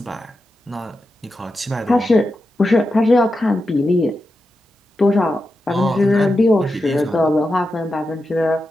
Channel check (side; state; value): both; normal; correlation 0.89